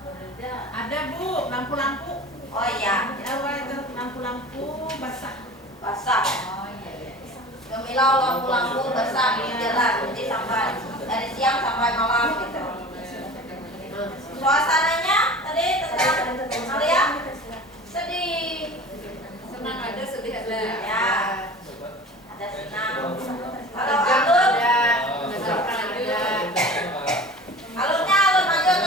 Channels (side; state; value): both; normal; correlation 0.38